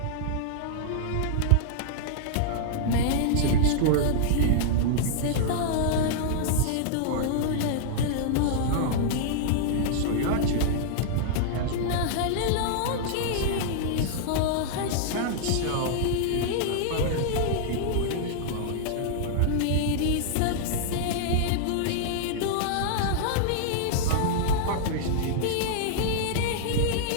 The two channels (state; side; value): different; both; correlation -0.01